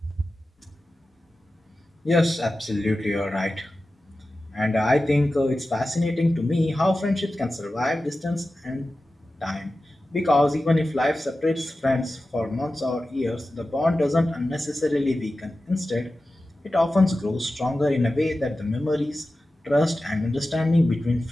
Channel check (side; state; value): both; normal; correlation 0.94